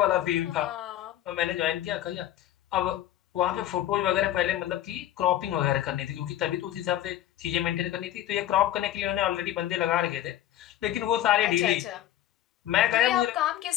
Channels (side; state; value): right; quieter; 12.6 dB